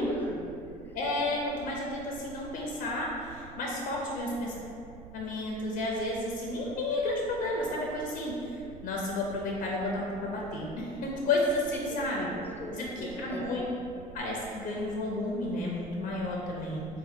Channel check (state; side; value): noise; right; rumble, 15 dB below the sound